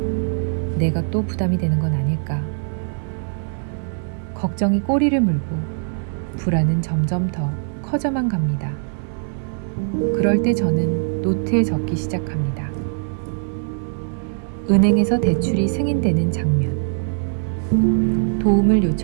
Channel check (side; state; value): left; silent; digital silence